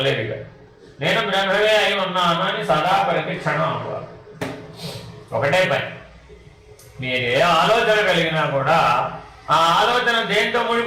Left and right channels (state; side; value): identical; both; correlation 1.00